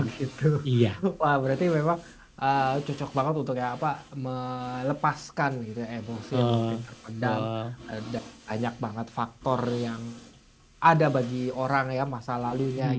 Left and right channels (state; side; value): identical; both; correlation 1.00